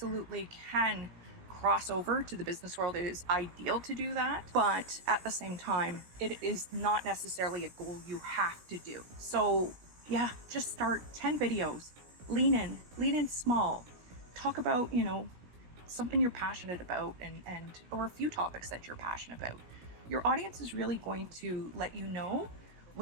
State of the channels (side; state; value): left; late; 17 ms